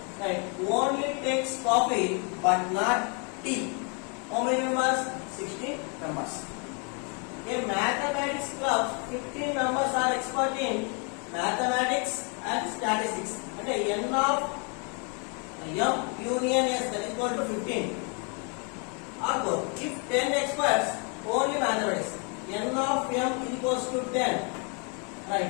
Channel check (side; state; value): right; quieter; 36.2 dB